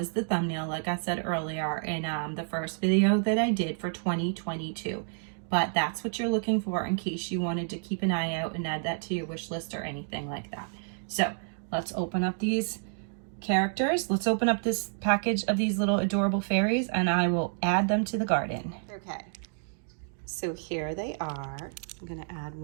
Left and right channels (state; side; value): silent; left; 58 dB below the other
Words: the thumbnail, like I said earlier, in the first video that I did for 2022. But that's what you're looking for in case you wanted to keep an eye out and add that to your wish list or anything like that. So let's open up these characters. Let's open up this package of these little adorable fairies, and I will add them to the garden. Okay, so here they are. I'm gonna add